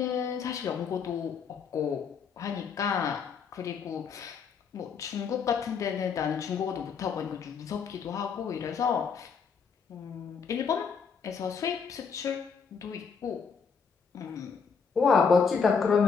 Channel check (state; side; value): quieter; right; 5.9 dB